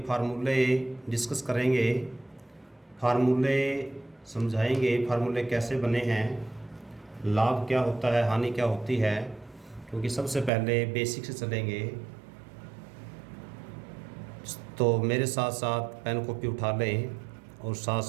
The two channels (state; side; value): drops out; left; at 10.5 s